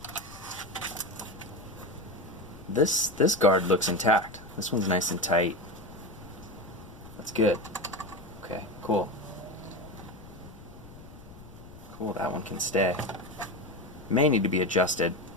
This guard looks intact. This one's nice and tight. That's good. Okay, cool. cool, that one can stay. May need to be adjusted,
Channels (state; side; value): noise; left; rumble, 18 dB below the sound